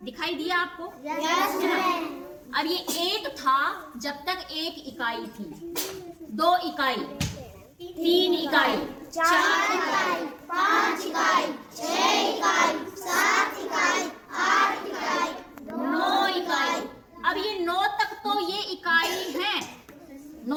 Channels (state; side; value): identical; both; correlation 1.00